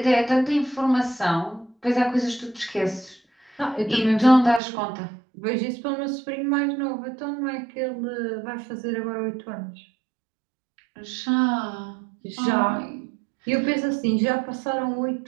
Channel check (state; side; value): drops out; left; at 4.6 s